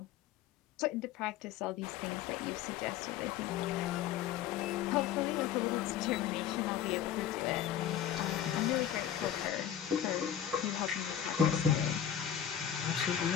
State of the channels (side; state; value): right; quieter; 10.0 dB